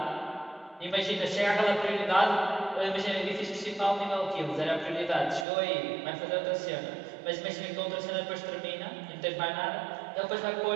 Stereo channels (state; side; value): drops out; left; at 5.5 s